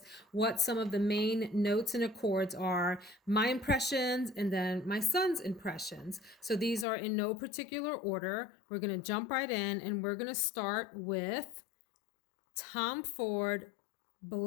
what some of the main notes and accords are, my impressions, and then my son's impressions. So these are in no particular order. We're going to jump right in, and we're going to start with Tom Ford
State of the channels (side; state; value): right; drops out; at 6.9 s